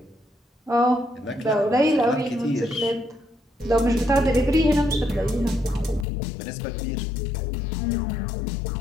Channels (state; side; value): drops out; right; at 6.1 s